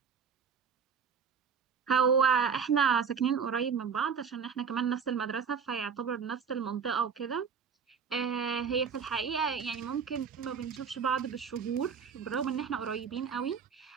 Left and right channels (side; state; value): left; quieter; 6.4 dB